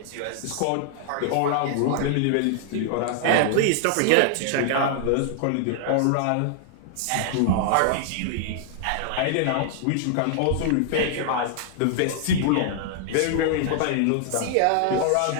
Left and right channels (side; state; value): both; different; correlation 0.00